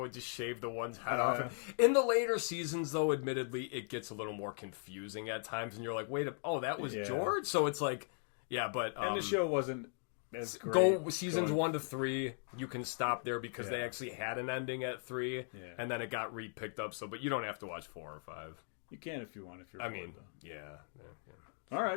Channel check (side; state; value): right; silent; 52 dB below the other